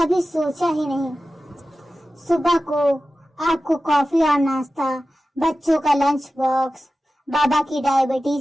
सोचा ही नहीं। सुबह को आपको कॉफी और नाश्ता, बच्चों का लंच बॉक्स, बाबा की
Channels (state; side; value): normal; both; correlation 0.94